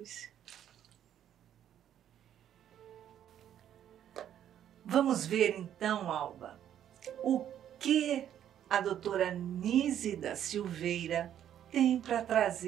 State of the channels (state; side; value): quieter; left; 10.4 dB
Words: Vamos ver então, Alba, o que a doutora Nízida Silveira tem para